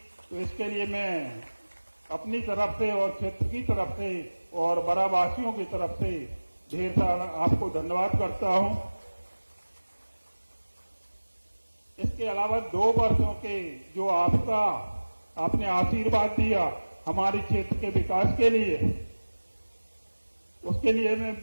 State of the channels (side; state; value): both; inverted; correlation -1.00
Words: तो इसके लिए मैं अपनी तरफ से और क्षेत्र की तरफ से और बरावासियों की तरफ से ढेर सारा आपको धन्यवाद करता हूं। इसके अलावा 2 वर्षों के जो आपने आशीर्वाद दिया हमारे क्षेत्र के विकास के लिए, उसके लिए